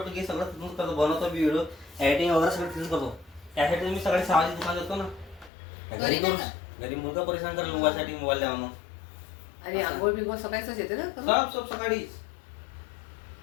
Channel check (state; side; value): drops out; right; at 5.5 s